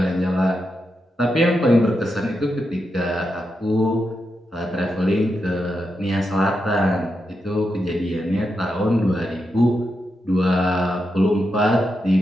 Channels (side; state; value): both; normal; correlation 0.86